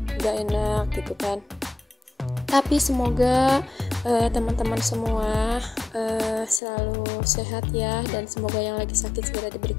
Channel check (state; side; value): drops out; right; at 6.6 s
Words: nggak enak gitu kan. Tapi semoga teman-teman semua selalu sehat ya, dan semoga yang lagi sakit segera